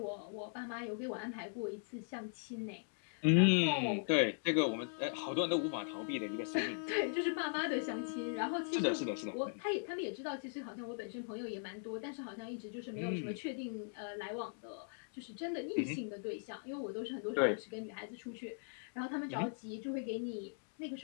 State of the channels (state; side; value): silent; right; digital silence